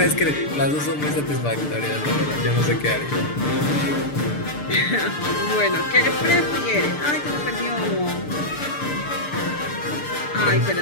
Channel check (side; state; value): right; late; 6.8 ms